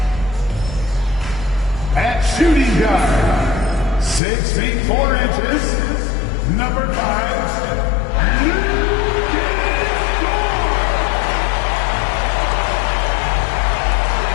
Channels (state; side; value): drops out; right; at 4.2 s